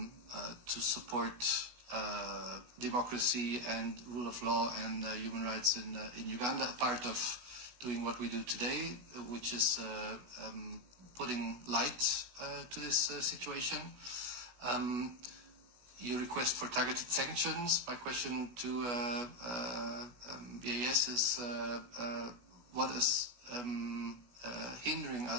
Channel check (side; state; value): left; late; 16 ms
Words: support democracy and rule of law and human rights in Uganda, a part of doing what we do today, which is putting light to this situation. You request for targeted sanctions. My question to BAS is, what is hindering